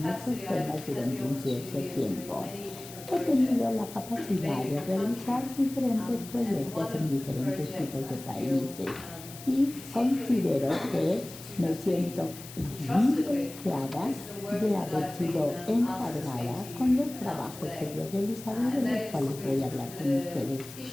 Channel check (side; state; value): left; noise; hiss, 15 dB below the sound